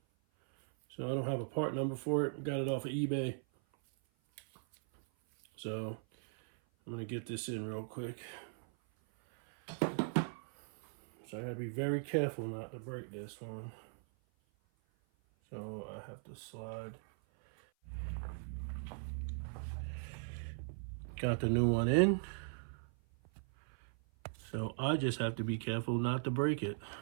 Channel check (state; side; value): silent; left; 52 dB below the other